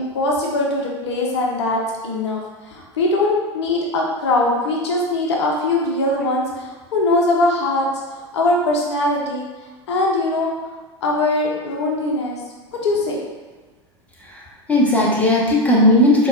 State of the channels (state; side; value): normal; both; correlation 0.18